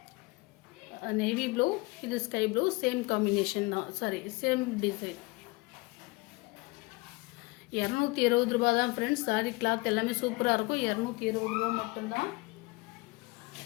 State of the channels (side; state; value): right; quieter; 24.7 dB